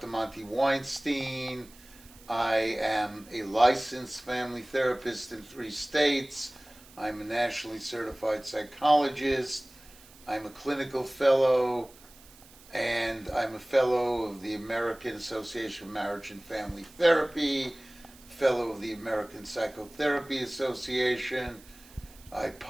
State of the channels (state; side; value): noise; right; hiss, 23 dB below the sound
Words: Monty Weinstein. I am a licensed family therapist in 3 states. I'm a nationally certified psychologist. I'm a clinical fellow, and I'm a fellow of the American Association of Marriage and Family Therapy, fellow of the American Psychotherapy Association. I